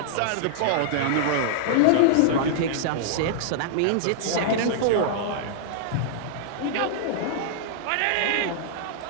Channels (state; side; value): different; both; correlation -0.01